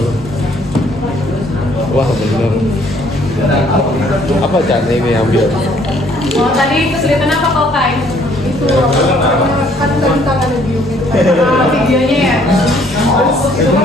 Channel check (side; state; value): both; normal; correlation 0.62